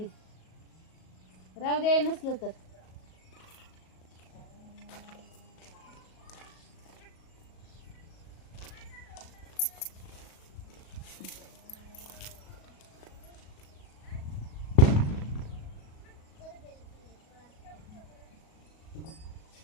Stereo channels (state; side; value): late; right; 37 ms